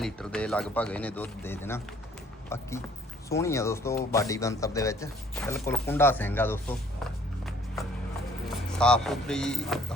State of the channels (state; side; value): normal; both; correlation 0.59